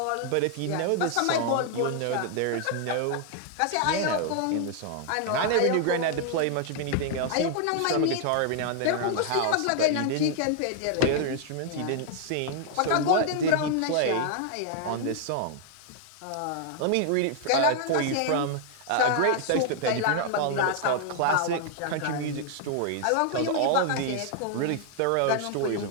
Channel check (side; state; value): both; different; correlation -0.01